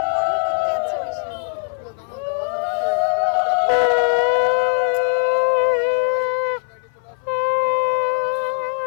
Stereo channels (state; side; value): silent; right; 57 dB below the other